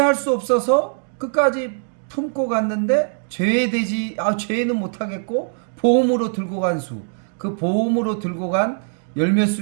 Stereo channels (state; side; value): silent; left; digital silence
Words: 수 없어서 끝까지 품고 갔는데 제외는 못하겠고 보험으로 들고 간 수, 그 보험으로 들고 간 열몇